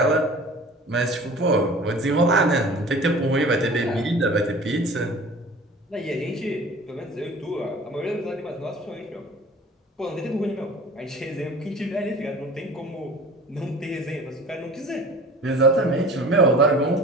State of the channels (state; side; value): normal; both; correlation 0.43